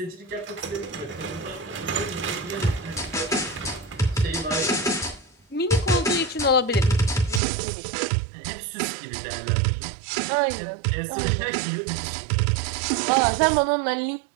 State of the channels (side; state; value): left; drops out; at 7.4 s